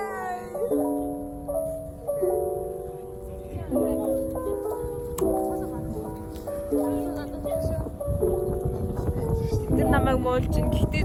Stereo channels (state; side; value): identical; both; correlation 1.00